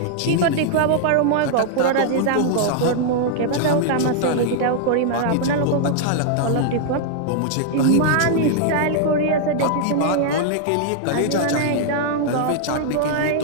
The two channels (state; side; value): different; both; correlation -0.01